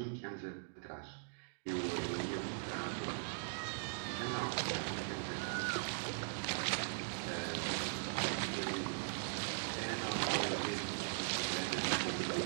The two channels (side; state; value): left; silent; digital silence